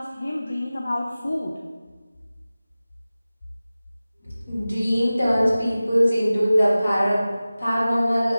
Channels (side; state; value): both; inverted; correlation -0.97